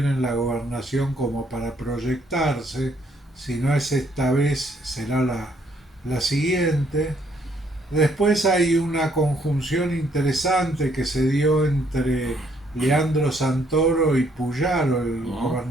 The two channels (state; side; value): normal; both; correlation 0.68